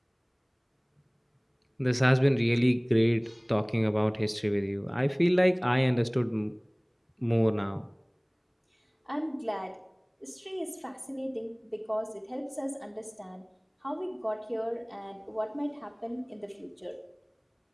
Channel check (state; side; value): identical; both; correlation 1.00